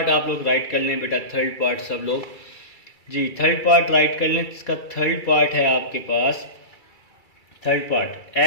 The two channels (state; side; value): late; right; 2.3 ms